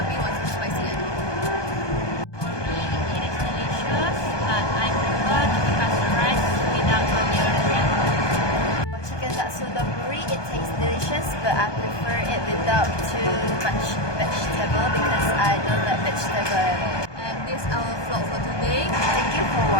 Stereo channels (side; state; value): right; late; 1.2 ms